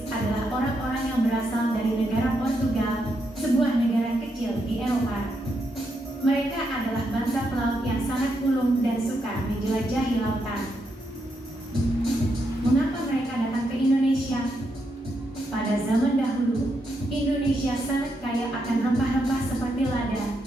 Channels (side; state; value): both; normal; correlation 0.81